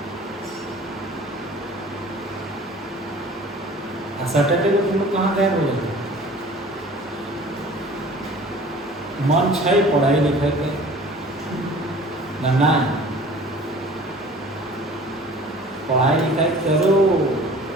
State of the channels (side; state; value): both; normal; correlation 0.46